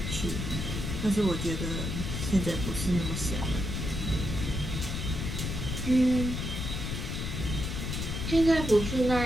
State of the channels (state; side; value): noise; left; rumble, 3 dB below the sound